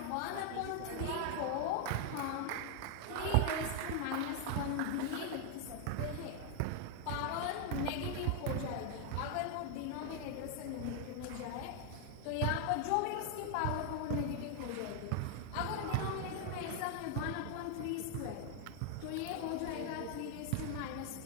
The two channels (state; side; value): different; both; correlation 0.00